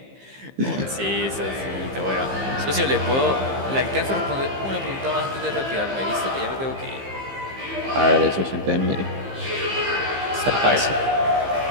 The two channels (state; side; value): late; left; 15 ms